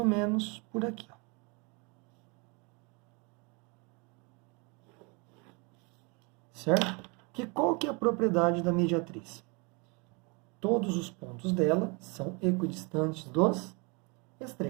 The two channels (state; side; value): quieter; left; 31.0 dB